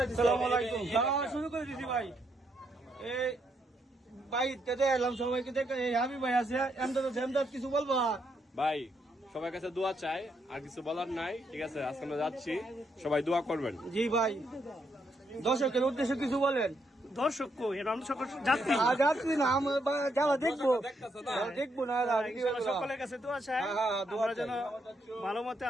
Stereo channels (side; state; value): both; normal; correlation 0.77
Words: দিছি। আসসালামু আলাইকুম। শুরু করে দিছি ভাই। এই ভাই তেতে এলাম সবাইকে দেখে। এই হাবিব ভাই আছে, এমদাদ কিছু বলবা? ভাই সবার কাছে দোয়া চাই, আর কিছু বলার নাই। ঠিক আছে, আজকে আমরা যাচ্ছি, সবাই দোয়া করবেন। জি ভাই, দর্শকের উদ্দেশ্যে কিছু বলেন। দর্শক যাত্রী যাচ্ছি না যারা দেখবো না সকলের কাছে দোয়া চাই, হ্যাঁ, দোয়া আমরা যেন চাই। ভালো মতে